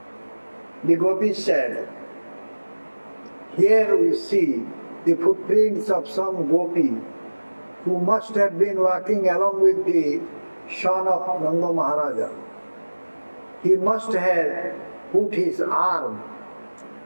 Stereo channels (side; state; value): both; inverted; correlation -1.00